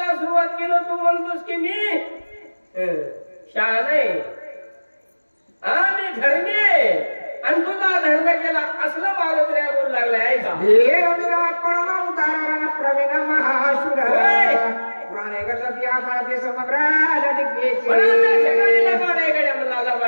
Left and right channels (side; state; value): both; inverted; correlation -1.00